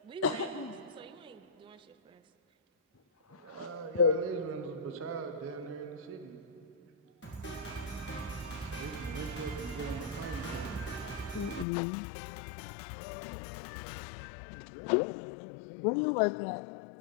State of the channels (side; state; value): right; drops out; at 11.7 s